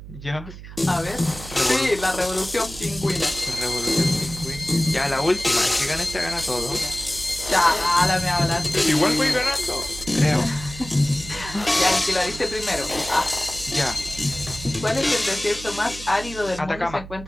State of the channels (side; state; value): right; noise; hum, 14 dB below the sound